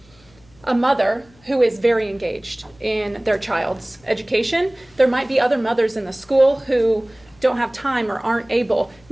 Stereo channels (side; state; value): left; noise; hum, 29 dB below the sound